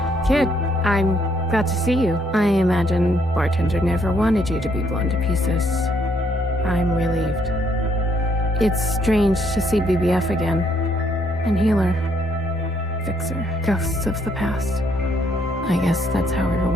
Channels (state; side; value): normal; both; correlation 0.70